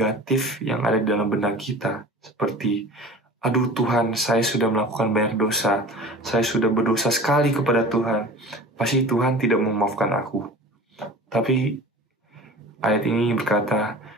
yang ada di dalam benak kita, seperti, aduh Tuhan, saya sudah melakukan banyak dosa, saya sudah berdosa sekali kepada Tuhan, pasti Tuhan tidak memaafkan aku. Tapi ayat ini berkata,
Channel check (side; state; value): both; normal; correlation 0.39